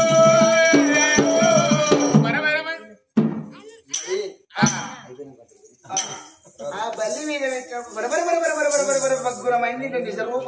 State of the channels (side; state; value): both; identical; correlation 1.00